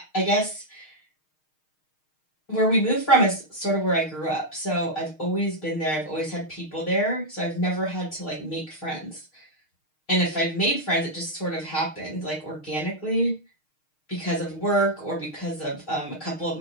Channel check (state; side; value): late; right; 6.5 ms